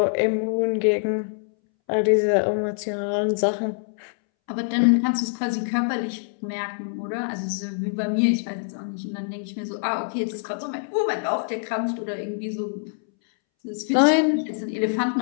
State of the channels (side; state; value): right; silent; 62 dB below the other